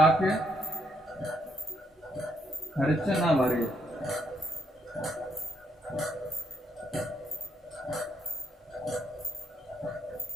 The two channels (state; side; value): normal; both; correlation 0.75